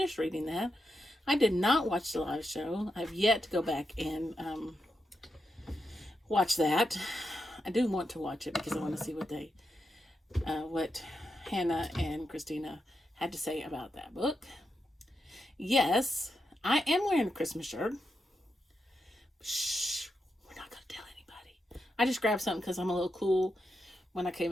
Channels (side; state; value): both; normal; correlation 0.86